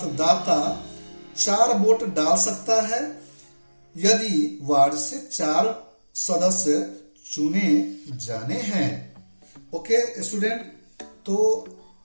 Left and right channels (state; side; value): inverted; both; correlation -1.00